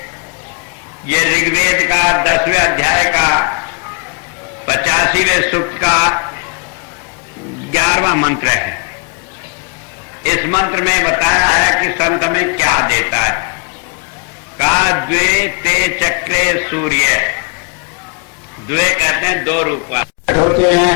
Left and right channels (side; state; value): right; quieter; 36.8 dB